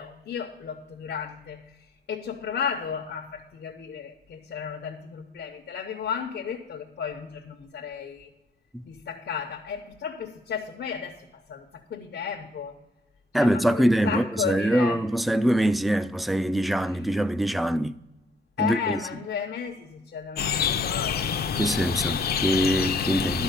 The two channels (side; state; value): both; normal; correlation 0.67